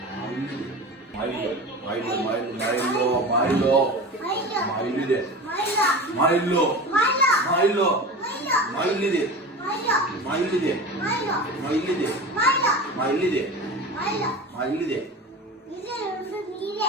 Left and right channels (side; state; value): both; normal; correlation 0.31